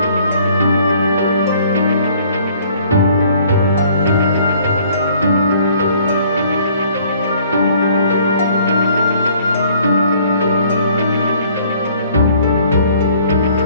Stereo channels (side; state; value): both; inverted; correlation -0.59